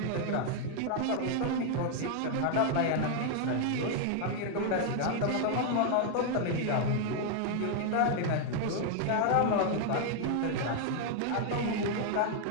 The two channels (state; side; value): different; both; correlation 0.00